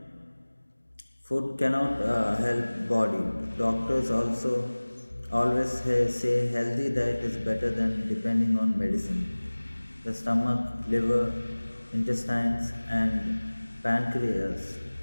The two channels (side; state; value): both; inverted; correlation -1.00